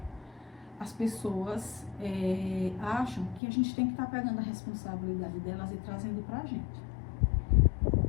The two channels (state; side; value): drops out; right; at 3.4 s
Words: as pessoas acham que a gente tem que estar pegando a responsabilidade delas e trazendo pra gente.